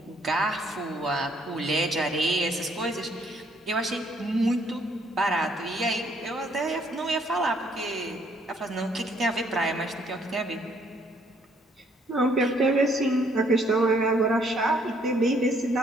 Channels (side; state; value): both; normal; correlation 0.66